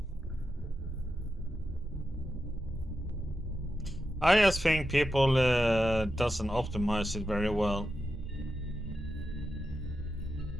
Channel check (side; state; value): both; normal; correlation 0.89